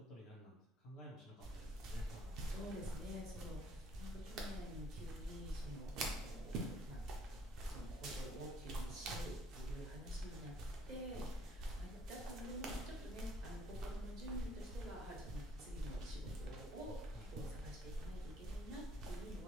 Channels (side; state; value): both; normal; correlation 0.63